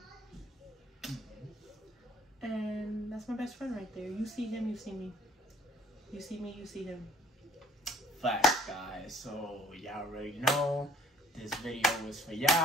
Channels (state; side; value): normal; both; correlation 0.56